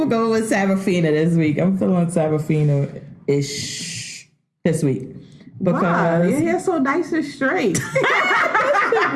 go with Serafina this week. I'm feeling Serafina-ish this week. Wow, Because your hair's so nice and straight.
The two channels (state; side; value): identical; both; correlation 1.00